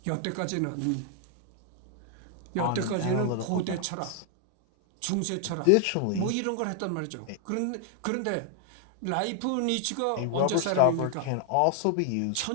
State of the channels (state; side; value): different; both; correlation 0.00